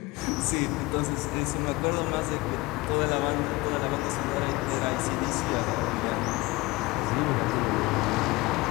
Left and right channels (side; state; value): right; quieter; 22.1 dB